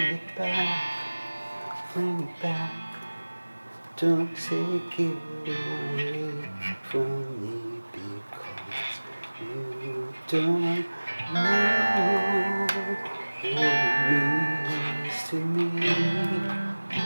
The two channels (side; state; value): both; inverted; correlation -1.00